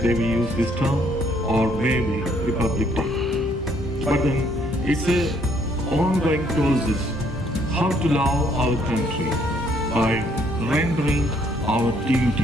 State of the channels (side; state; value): both; normal; correlation 0.66